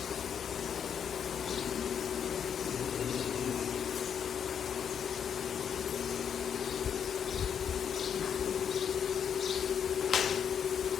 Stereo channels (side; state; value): right; quieter; 7.9 dB